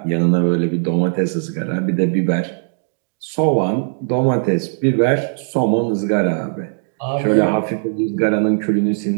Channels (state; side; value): silent; left; digital silence